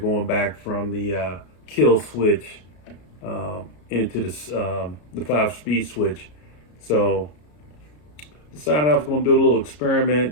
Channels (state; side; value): late; right; 33 ms